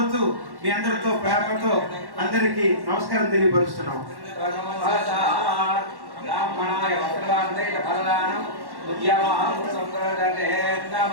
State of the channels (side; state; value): left; late; 1.1 ms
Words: మీ అందరితో ప్రేమతో అందరికీ నమస్కారం తెలియపరుస్తున్నాం. ब्राह्मणाय वस्त्रदानैः फलदानं उद्यमः संप्रदते